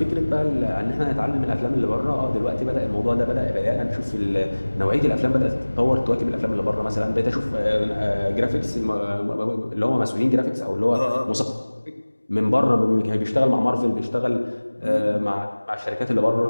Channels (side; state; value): both; inverted; correlation -1.00